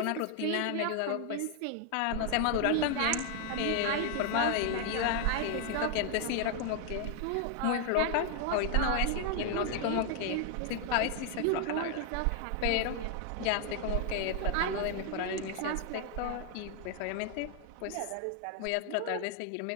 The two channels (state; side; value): different; both; correlation 0.00